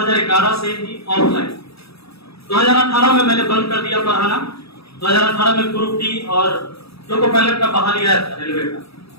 से ही ऑफलाइन। 2018 में मैंने बंद कर दिया पढ़ाना। 2018 में ग्रुप डी और लोको पायलट का बहाली आया था रेलवे का,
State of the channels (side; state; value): right; late; 0.77 ms